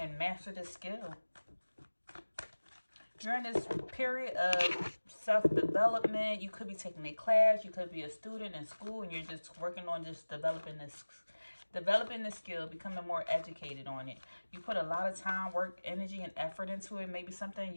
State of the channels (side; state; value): both; inverted; correlation -1.00